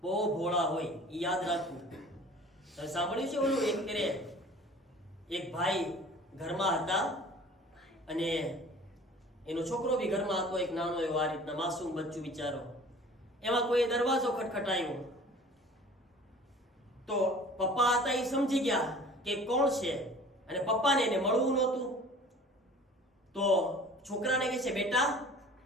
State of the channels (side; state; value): both; normal; correlation 0.46